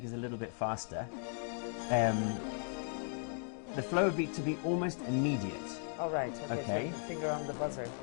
is a little bit faster. The flow would be to be almost immediate. All right. Okay. So finger on the buzzer.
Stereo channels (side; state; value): right; silent; 53 dB below the other